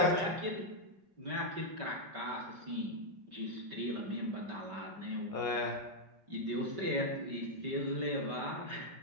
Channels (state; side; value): late; left; 5.2 ms